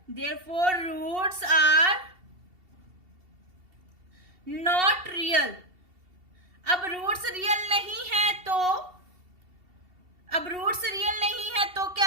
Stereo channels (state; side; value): late; left; 2.7 ms